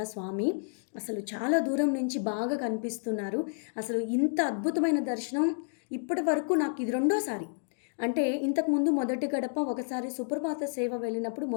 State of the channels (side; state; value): right; silent; digital silence